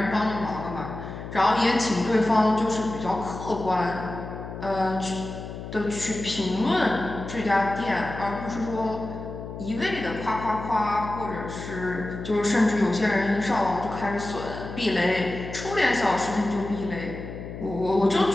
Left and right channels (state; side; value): noise; left; hum, 10 dB below the sound